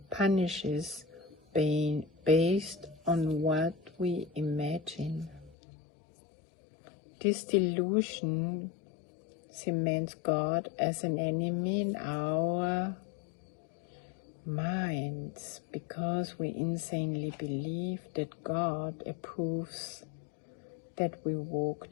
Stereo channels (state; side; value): drops out; right; at 5.6 s